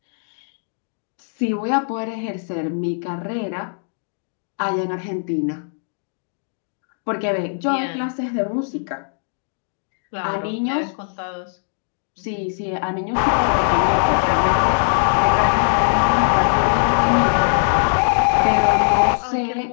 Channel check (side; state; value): right; silent; digital silence